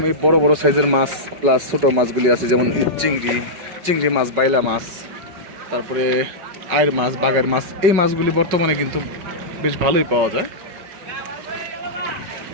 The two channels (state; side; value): late; left; 5.3 ms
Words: এই বড় বড় সাইজের মাছ প্লাস ছোট মাছগুলি আছে, যেমন চিংড়ি মাছ, বাইলা মাছ, তারপরে আয়ের মাছ, বাগার মাছ। এই মাছগুলি বর্তমানে কিন্তু বেশ ভালোই পাওয়া যায়।